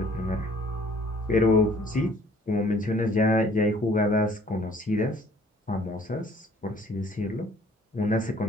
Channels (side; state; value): both; normal; correlation 0.57